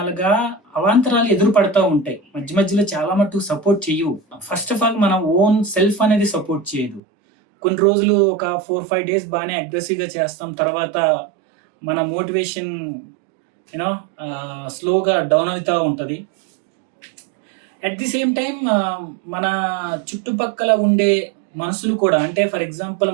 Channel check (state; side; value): drops out; left; at 7.0 s